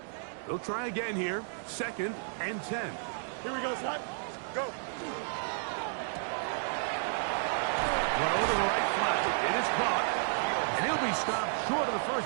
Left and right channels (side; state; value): left; silent; digital silence